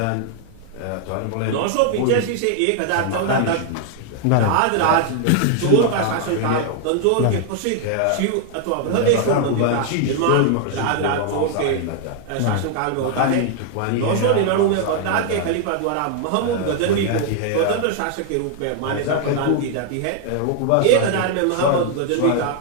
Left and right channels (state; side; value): different; both; correlation 0.00